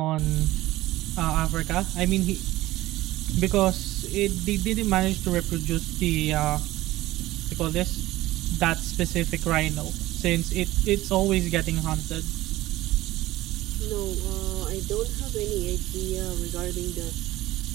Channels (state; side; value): quieter; left; 16.9 dB